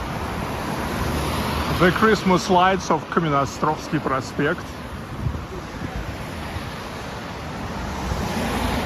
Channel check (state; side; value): identical; both; correlation 1.00